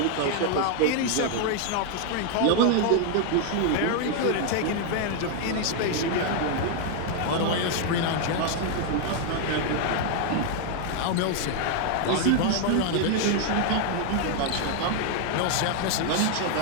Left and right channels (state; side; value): different; both; correlation 0.00